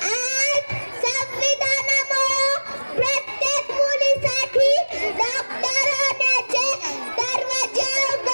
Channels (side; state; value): both; inverted; correlation -1.00